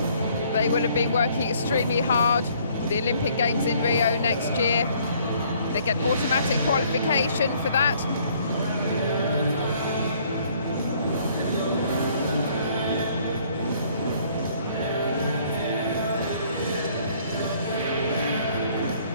They will have been working extremely hard for the Olympic Games in Rio next year. They get automatic qualification for that.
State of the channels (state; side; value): inverted; both; correlation -0.61